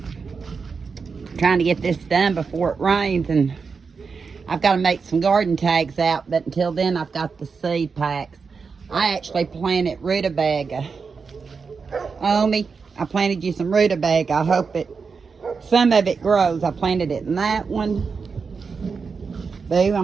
Trying to get this done before it rains, and I've got to make some garden tags out, but until then I've got the seed packs. I actually planted rutabaga. Omi, I planted you some rutabaga. I hope some of it grows. I planted it in that one. Boo,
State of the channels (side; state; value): left; quieter; 5.2 dB